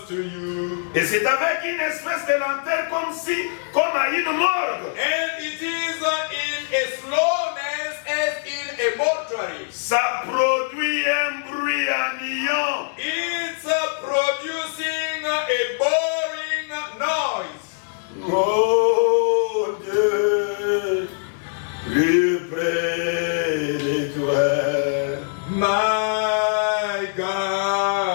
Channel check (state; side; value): silent; right; digital silence